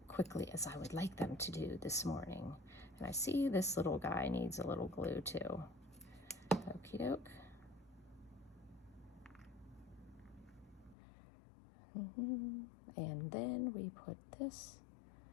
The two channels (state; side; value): drops out; right; at 11.0 s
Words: quickly as I would like them to do this morning. And I see this little guy needs a little glue too. Okie doke. And then we put this